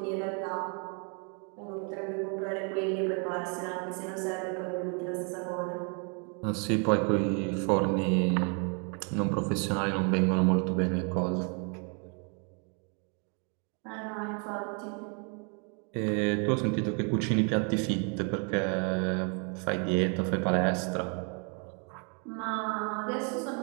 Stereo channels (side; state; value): left; quieter; 37.9 dB